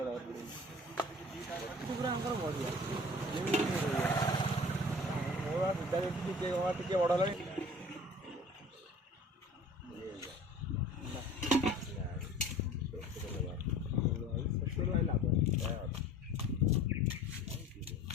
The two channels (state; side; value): normal; both; correlation 0.44